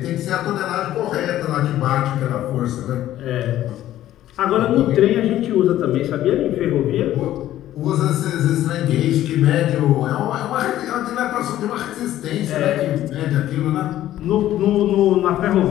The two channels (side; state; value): right; quieter; 13.2 dB